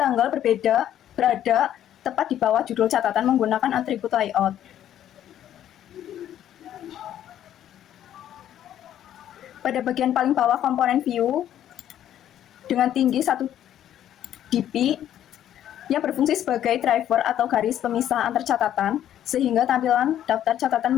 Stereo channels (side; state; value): right; quieter; 11.2 dB